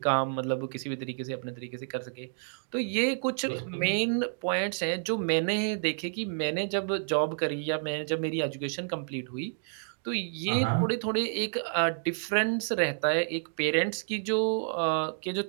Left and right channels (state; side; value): silent; left; digital silence